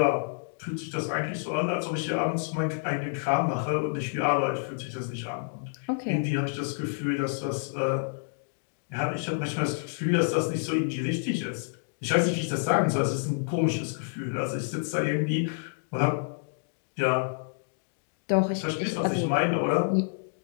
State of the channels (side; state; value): right; silent; digital silence